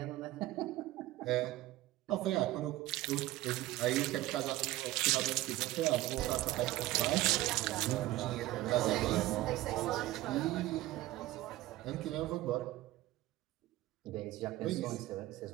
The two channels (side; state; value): left; quieter; 16.9 dB